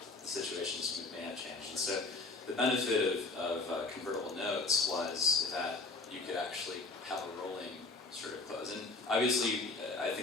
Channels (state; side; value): quieter; right; 3.4 dB